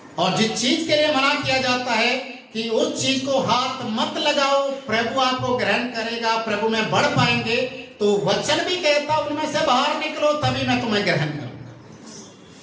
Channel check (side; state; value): both; identical; correlation 1.00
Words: और जिस चीज के लिए मना किया जाता है कि उस चीज को हाथ मत लगाओ, प्रभु आपको ग्रहण करेगा, प्रभु में बढ़ पाएंगे, तो वचन भी कहता उनमें से बाहर निकलो तभी मैं तुम्हें ग्रहण करूंगा।